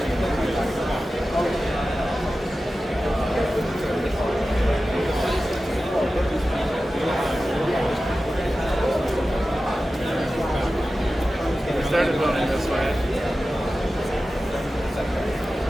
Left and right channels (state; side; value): normal; both; correlation 0.94